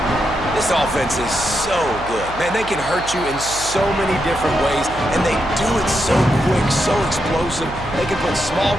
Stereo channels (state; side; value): noise; right; hum, 14 dB below the sound